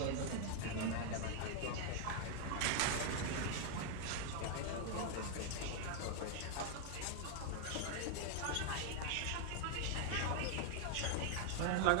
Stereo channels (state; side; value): different; both; correlation 0.00